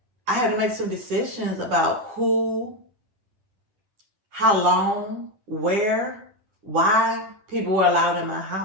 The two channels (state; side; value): late; left; 9.8 ms